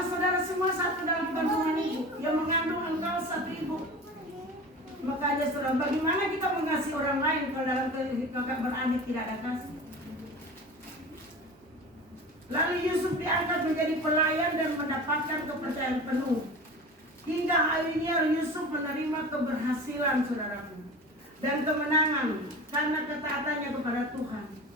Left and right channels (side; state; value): both; normal; correlation 0.34